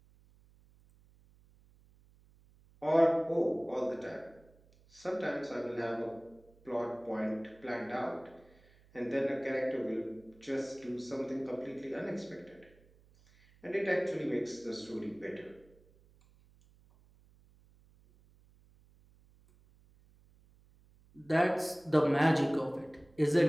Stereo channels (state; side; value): noise; right; hum, 28 dB below the sound